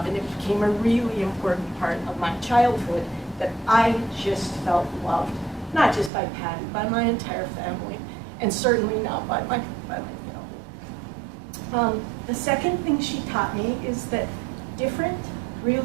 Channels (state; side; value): drops out; left; at 6.1 s